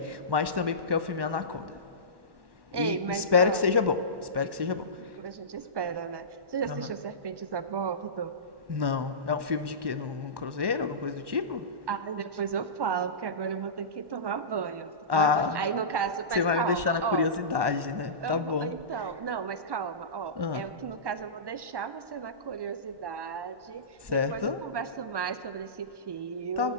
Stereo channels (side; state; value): left; late; 1.1 ms